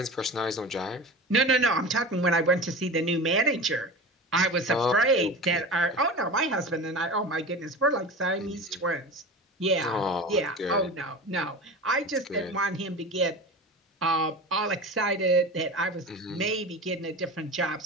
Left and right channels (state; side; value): normal; both; correlation 0.31